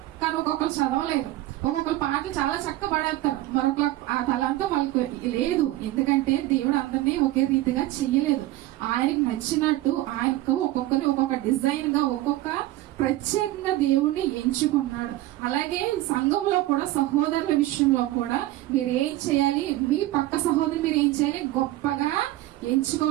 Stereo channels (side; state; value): left; quieter; 16.1 dB